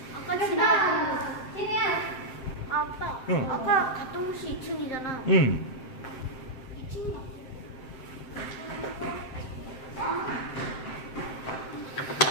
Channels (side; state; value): right; late; 7.6 ms